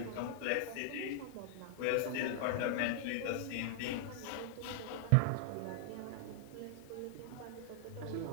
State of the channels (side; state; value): both; different; correlation 0.00